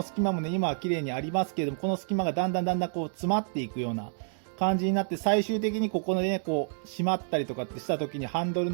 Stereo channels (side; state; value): left; silent; digital silence